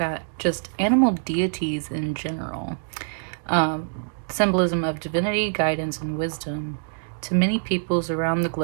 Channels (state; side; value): silent; left; digital silence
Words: just animal deities in general. Symbolism of divinity, guidance, and wisdom. To many peoples around the